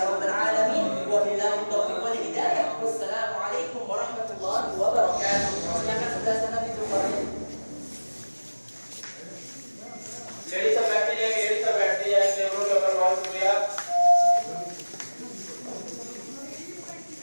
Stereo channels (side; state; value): both; inverted; correlation -1.00